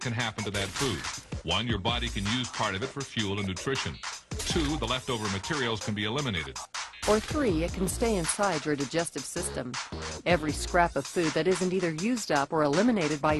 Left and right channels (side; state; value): both; identical; correlation 1.00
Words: happen to that food. 1, your body can use part of it for fuel and nutrition. 2, the leftover materials can be eliminated. Or 3, it can stay inside your digestive system. Every scrap of food that isn't either used up or eliminated by